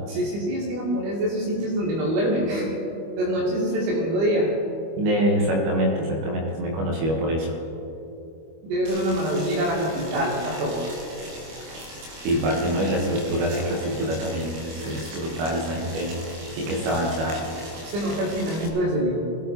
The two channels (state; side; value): late; left; 25 ms